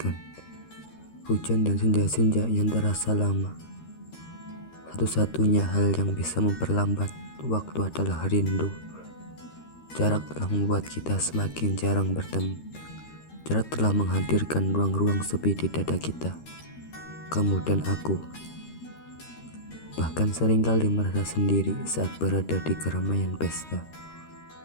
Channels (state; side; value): late; right; 13 ms